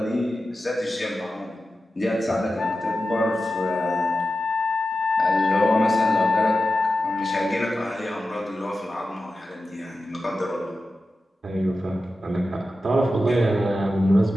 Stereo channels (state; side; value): normal; both; correlation 0.92